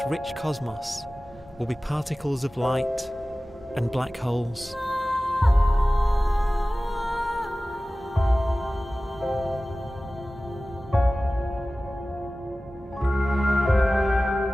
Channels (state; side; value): normal; both; correlation 0.97